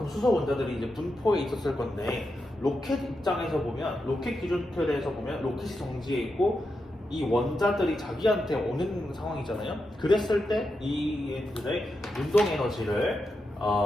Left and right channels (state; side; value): normal; both; correlation 0.87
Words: 수소 원자들이 이제 분포해 있었을 건데 로켓 입장에서 보면 로켓 기준틀에서 보면 로켓이 정지해 있고 이 원자들이 자기한테 오는 상황이잖아요. 그랬을 때 이 애들의 운동 에너지를